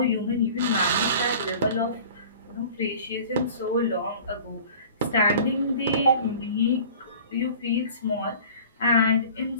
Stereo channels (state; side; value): inverted; both; correlation -0.44